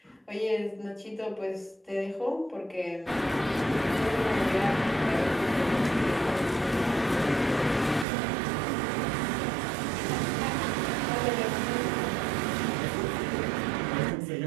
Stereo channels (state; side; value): drops out; left; at 8.1 s